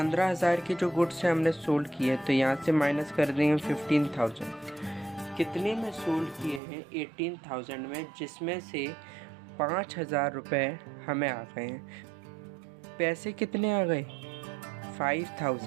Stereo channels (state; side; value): drops out; left; at 6.6 s